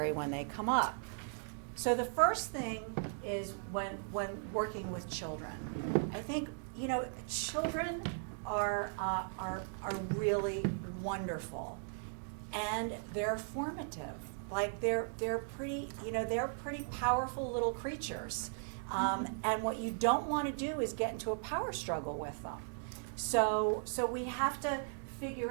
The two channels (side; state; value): left; silent; digital silence